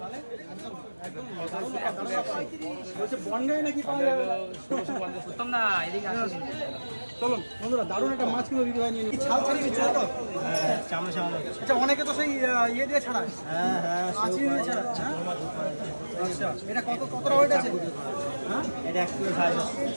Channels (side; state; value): both; inverted; correlation -1.00